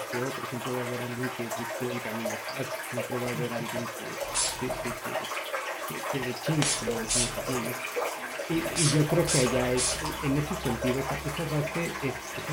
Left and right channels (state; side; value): identical; both; correlation 1.00